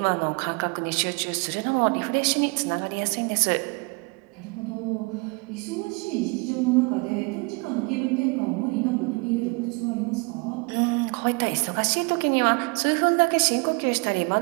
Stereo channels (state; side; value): quieter; left; 29.6 dB